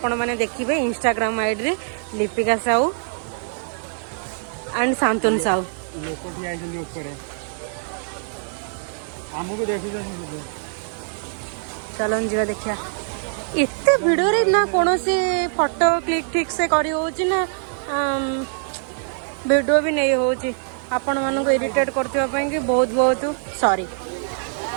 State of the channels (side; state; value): left; silent; 63 dB below the other